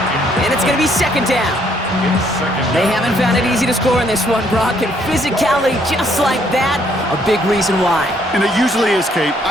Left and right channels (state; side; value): normal; both; correlation 0.68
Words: And it's going to be second down. It's second They down. haven't found it easy to score in this one, Brock, and physicality just like that, a big reason why. And it usually is, Kate.